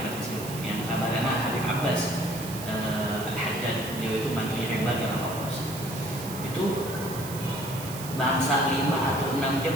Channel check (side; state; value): right; noise; hiss, 11 dB below the sound